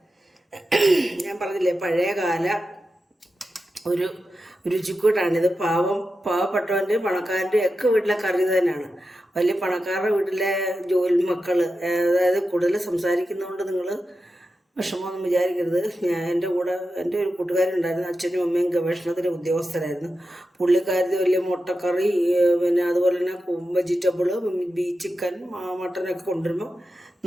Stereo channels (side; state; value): both; normal; correlation 0.90